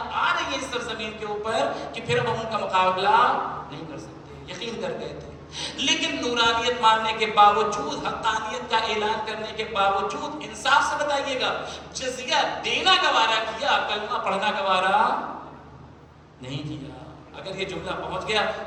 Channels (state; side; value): identical; both; correlation 1.00